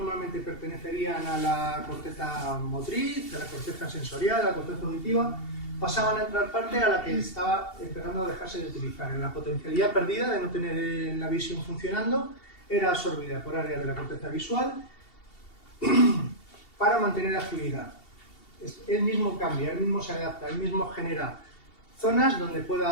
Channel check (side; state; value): right; late; 2.7 ms